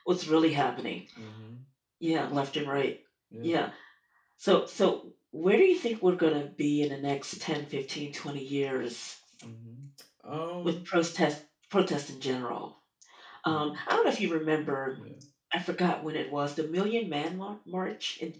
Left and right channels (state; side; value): identical; both; correlation 1.00